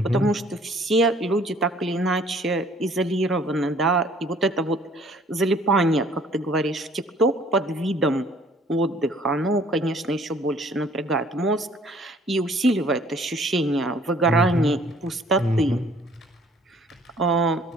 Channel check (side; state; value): both; normal; correlation 0.57